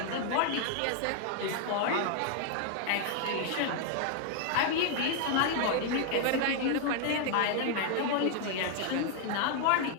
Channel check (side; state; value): both; different; correlation 0.00